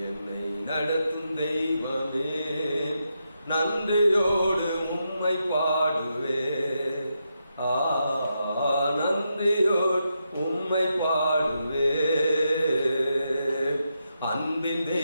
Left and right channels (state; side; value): inverted; both; correlation -0.84